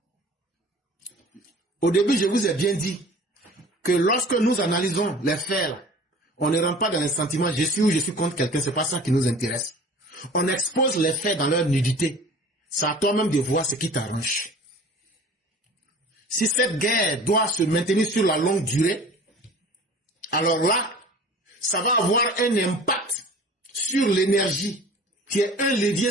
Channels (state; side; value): normal; both; correlation 0.43